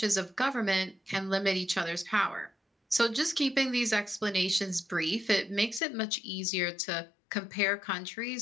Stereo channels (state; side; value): drops out; right; at 5.8 s